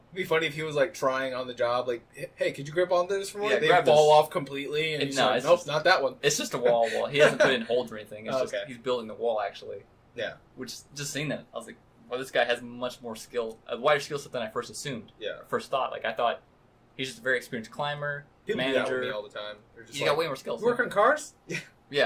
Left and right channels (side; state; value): both; identical; correlation 1.00